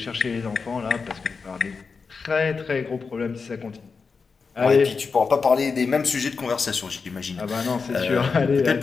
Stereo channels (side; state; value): right; quieter; 5.0 dB